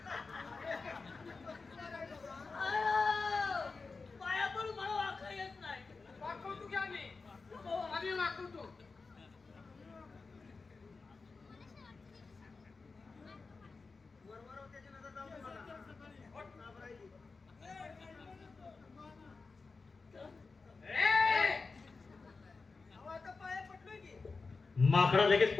अहो, पाया पडून मला वाकता येत नाही. वाकवतो की आम्ही? आम्ही वाकवतो. वरवर त्याची नजर जाऊ दे मला. घाबरायची. अहो, आता पाया पडलोय की. माकडा लगेच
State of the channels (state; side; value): quieter; right; 4.2 dB